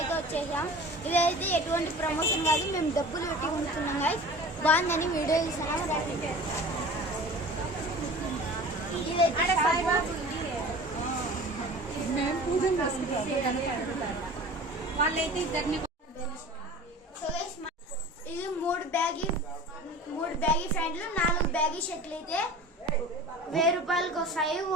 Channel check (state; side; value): normal; both; correlation 0.39